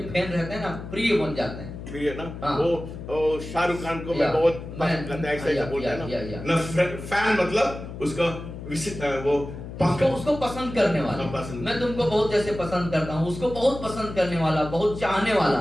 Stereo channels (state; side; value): noise; left; hum, 10 dB below the sound